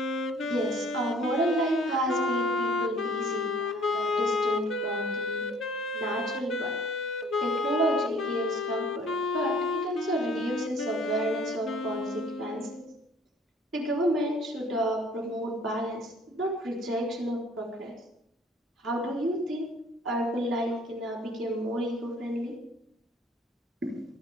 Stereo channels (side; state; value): both; normal; correlation 0.54